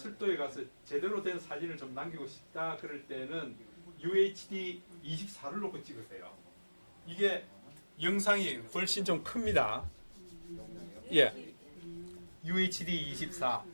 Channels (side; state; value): both; inverted; correlation -1.00